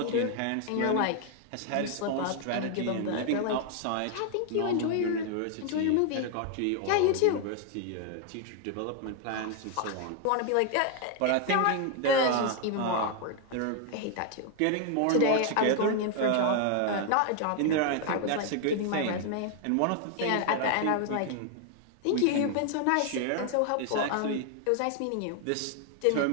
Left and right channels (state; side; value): different; both; correlation 0.00